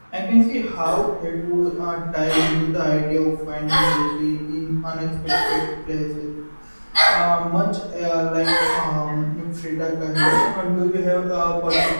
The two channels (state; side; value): inverted; both; correlation -1.00